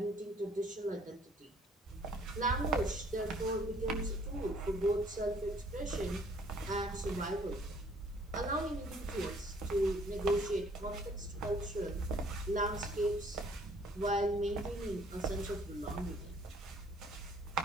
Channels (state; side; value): normal; both; correlation 0.59